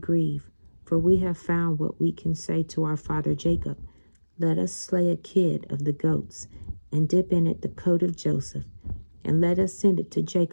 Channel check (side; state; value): both; inverted; correlation -1.00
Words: for we have found what we can say to our father Jacob. Let us slay a kid of the goats, and dip in it the coat of Joseph, and let us send it to